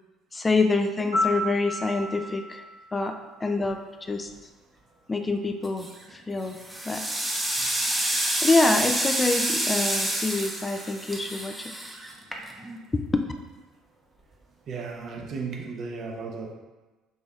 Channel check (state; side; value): normal; both; correlation 0.84